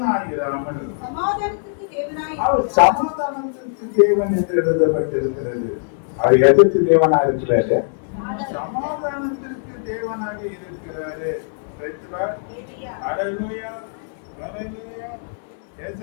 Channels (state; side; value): silent; right; digital silence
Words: சமாதானத்திற்கு தேவனாய் அவர் இருக்கிறார். சமாதானத்திற்கு தேவன் என்று எழுதப்பட்டிருக்கிறது. அவர் எதற்கு தேவனா இருக்கிறாரு? சமாதானத்திற்கு தேவனாக இருக்கிறாரு. ஹல்லேலூயா, ஹல்லேலூயா.